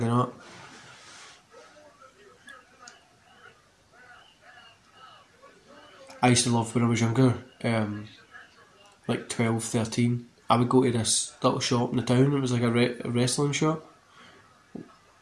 up. I used to love when I was younger, like 12, 13. I would go to this little shop in the town. It was like a wrestling shop.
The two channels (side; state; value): both; identical; correlation 1.00